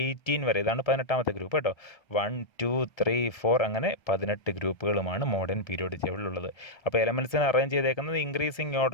18 വരെ, ഇതാണ് 18ാമത്തെ ഗ്രൂപ്പ് കേട്ടോ. 1 2 3 4 അങ്ങനെ 18 ഗ്രൂപ്പുകളുമാണ് മോഡേൺ പീരിയോഡിക് ടേബിളിലുള്ളത്. അപ്പോൾ എലമെൻറ്റ്സിനെ അറേഞ്ച് ചെയ്തേക്കുന്നത് ഇൻക്രീസിങ്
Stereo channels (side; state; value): right; late; 1.7 ms